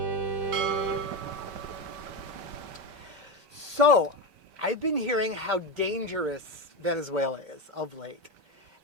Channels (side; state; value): left; late; 5.2 ms